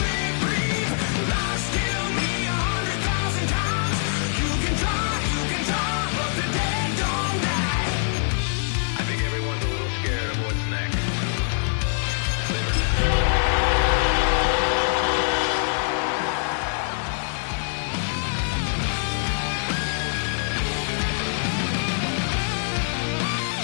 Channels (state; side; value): silent; right; digital silence